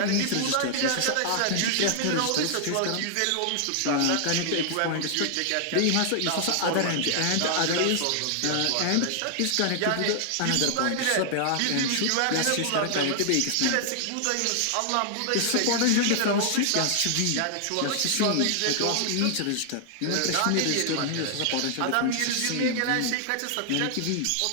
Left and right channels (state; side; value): different; both; correlation 0.00